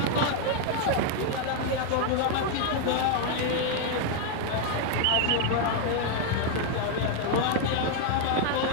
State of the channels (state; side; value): different; both; correlation 0.00